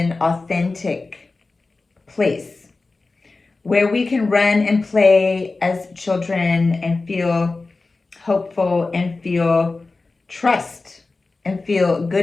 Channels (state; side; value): quieter; right; 3.6 dB